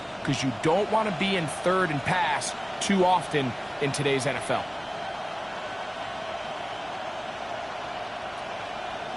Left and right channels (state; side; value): identical; both; correlation 1.00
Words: because you don't want to be in third and pass too often in today's NFL.